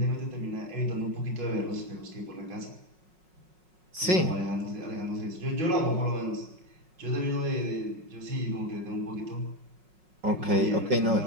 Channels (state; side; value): late; left; 5.4 ms